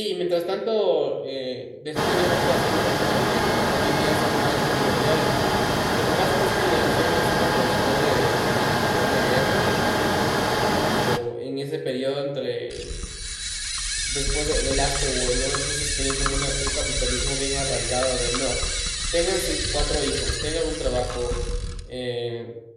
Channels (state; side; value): identical; both; correlation 1.00